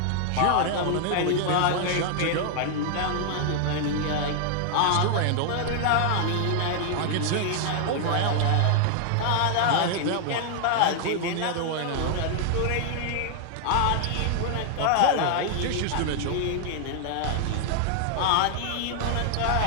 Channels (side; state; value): both; different; correlation 0.00